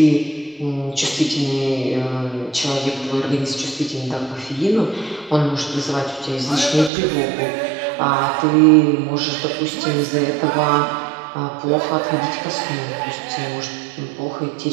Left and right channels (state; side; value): drops out; left; at 6.9 s